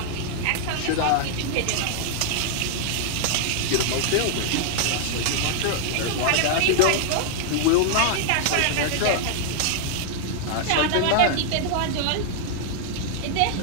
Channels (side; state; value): both; different; correlation 0.00